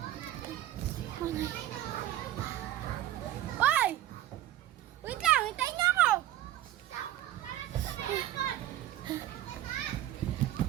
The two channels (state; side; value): quieter; left; 13.5 dB